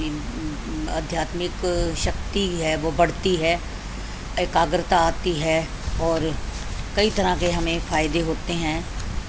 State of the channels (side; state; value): both; identical; correlation 1.00